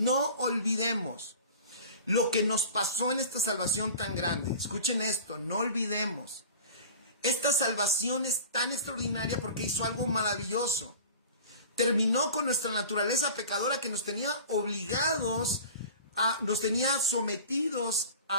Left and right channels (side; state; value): both; inverted; correlation -0.39